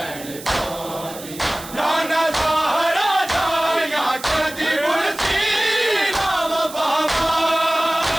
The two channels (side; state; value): right; noise; hiss, 15 dB below the sound